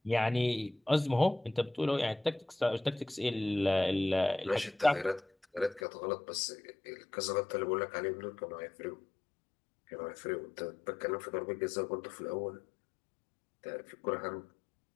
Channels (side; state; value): right; drops out; at 5.8 s